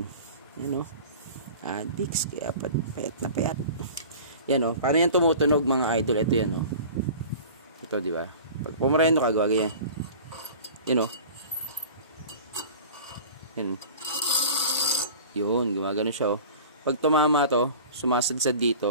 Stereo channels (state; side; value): inverted; both; correlation -0.40